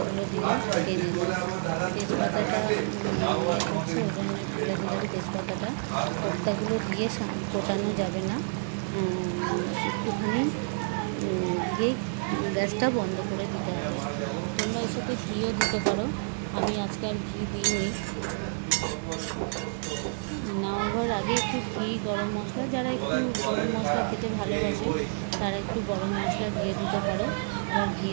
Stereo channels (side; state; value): left; silent; digital silence